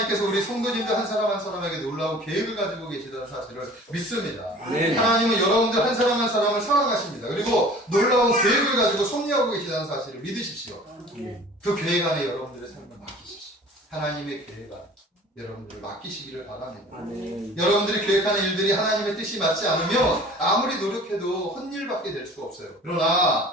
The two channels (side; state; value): both; normal; correlation 0.46